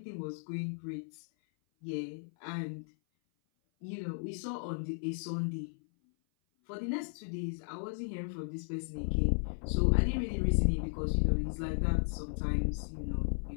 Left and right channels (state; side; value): silent; right; 54 dB below the other